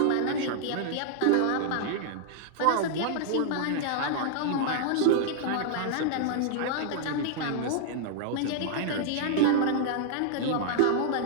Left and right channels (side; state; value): both; different; correlation -0.01